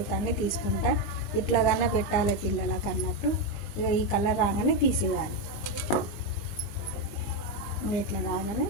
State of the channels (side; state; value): right; late; 20 ms